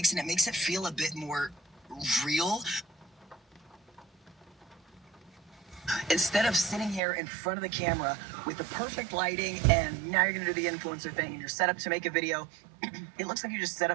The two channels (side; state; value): left; drops out; at 7.0 s